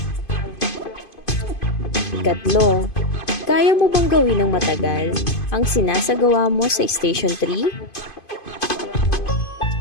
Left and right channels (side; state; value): right; late; 2.5 ms